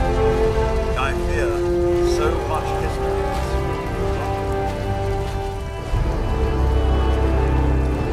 I fear so much history.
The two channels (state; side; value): identical; both; correlation 1.00